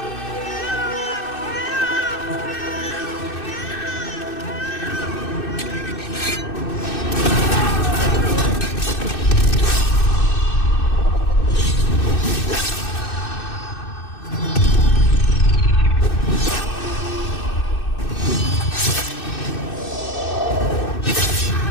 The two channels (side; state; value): right; late; 2.6 ms